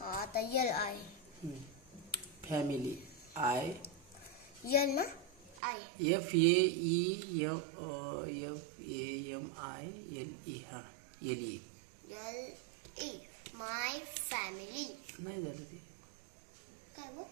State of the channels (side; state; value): left; drops out; at 5.6 s